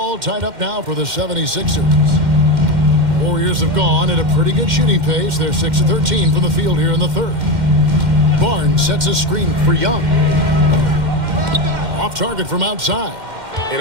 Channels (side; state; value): left; late; 2.1 ms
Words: tied up now for the 76ers. Warriors have gone at a pretty good shooting pace. They're 6 of 13 from the field here in the third. Barnes sets a screen for Young. Off target from outside. And